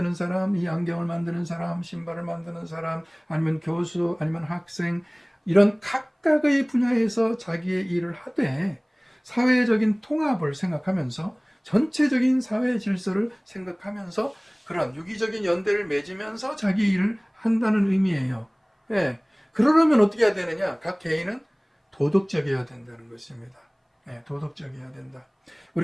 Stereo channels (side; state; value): both; identical; correlation 1.00